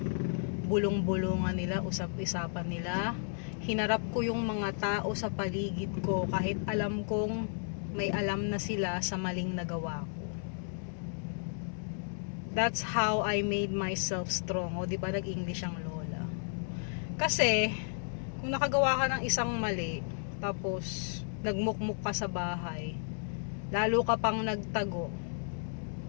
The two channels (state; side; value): silent; right; digital silence